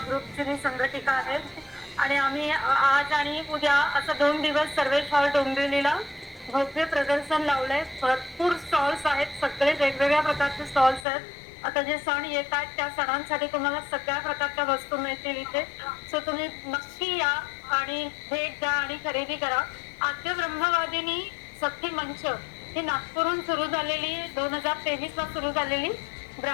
ग्रुपची मी संघटिका आहे आणि आम्ही आज आणि उद्या असं 2 दिवस सर्वेश हॉल डोंबिवलीला भव्य प्रदर्शन लावलंय. भरपूर स्टॉल्स आहेत, सगळे वेगवेगळ्या प्रकारचे स्टॉल्स आहेत. आता जे सण येत आहेत त्या सणांसाठी तुम्हाला सगळ्या प्रकारच्या वस्तू मिळतील इथे. सो तुम्ही नक्की या आणि भेट द्या आणि खरेदी करा. आद्य ब्रह्मवादिनी सखी मंच ही नागपूरहून सुरू झालेली 2023ला सुरू झालेली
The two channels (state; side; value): drops out; right; at 11.1 s